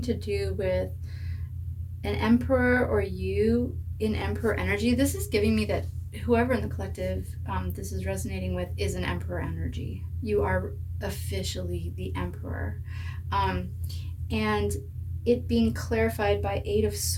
do with an emperor or you in emperor energy. This is giving me that whoever in the collective this is resonating with is an emperor energy. You are officially the emperor. And it being clarified by Eight of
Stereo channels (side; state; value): both; identical; correlation 1.00